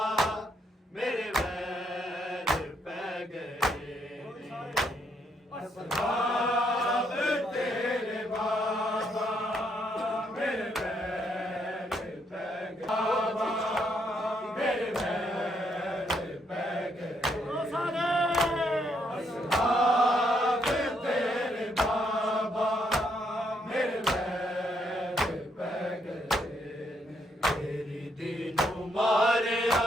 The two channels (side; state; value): both; normal; correlation 0.74